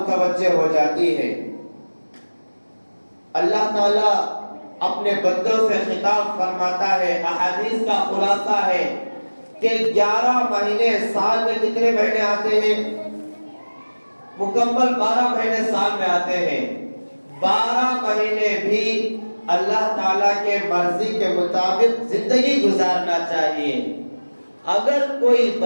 ہو جاتی ہے۔ اللہ تعالیٰ اپنے بندوں سے خطاب فرماتا ہے، احادیث کا خلاصہ ہے کہ 11 مہینے سال میں کتنے مہینے آتے ہیں؟ مکمل 12 مہینے سال میں آتے ہیں۔ 12 مہینے بھی اللہ تعالیٰ کے مرضی کے مطابق زندگی گزارنا چاہیے۔ اگر کوئی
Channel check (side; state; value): both; inverted; correlation -1.00